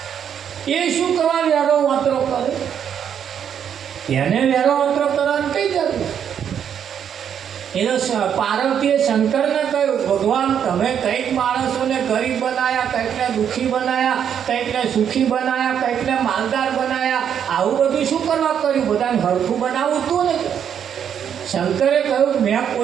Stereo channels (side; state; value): left; quieter; 8.5 dB